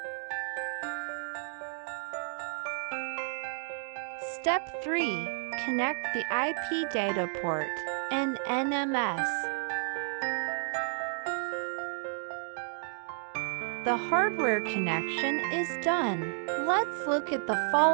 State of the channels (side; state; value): left; silent; digital silence